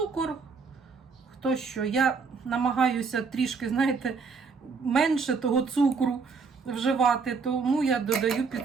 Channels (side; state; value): left; quieter; 5.0 dB